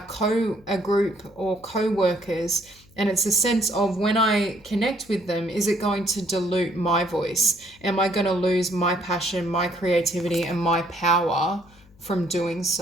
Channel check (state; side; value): noise; left; hum, 27 dB below the sound